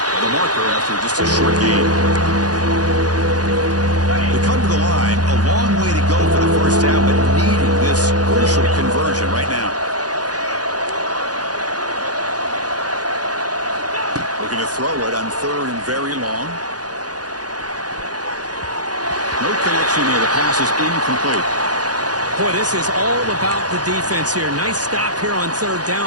the marker after just a short gain. They come to the line. A long way to go for the 1st down, but needing this crucial conversion right now. Looking to throw it on 3rd and very long. No connection there. The pass is incomplete. Boy, this is all about the defense here. Nice stop here on 3rd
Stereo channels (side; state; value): left; late; 0.69 ms